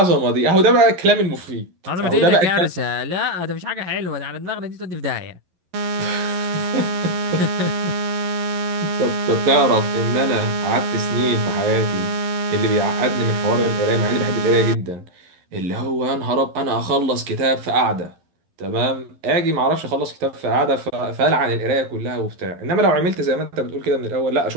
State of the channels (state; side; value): late; left; 11 ms